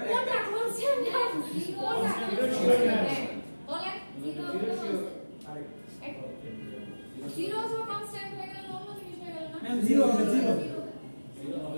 কোনটা constant না কোনটা বলেন জিরো অথবা কনস্ট্যান্ট হয়ে গেল অন্য জিনিস হয়ে গেল না ম্যাম জিরো হবে জিরো জিরো হবে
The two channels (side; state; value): both; inverted; correlation -1.00